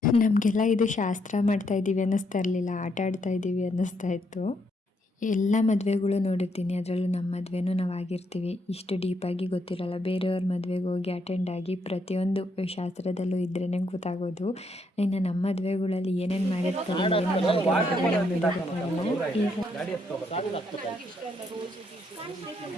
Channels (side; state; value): both; normal; correlation 0.75